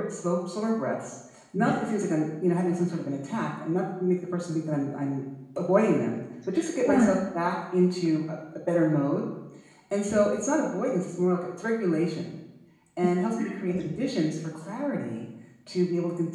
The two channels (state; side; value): identical; both; correlation 1.00